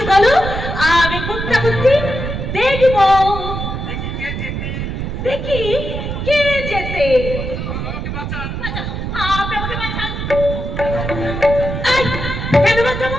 বলো, আমি কোনটা বলছি দেখব। দেখি কে যেতে। আপনি আমাকে বাঁচান। কেন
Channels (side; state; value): right; noise; rumble, 4 dB below the sound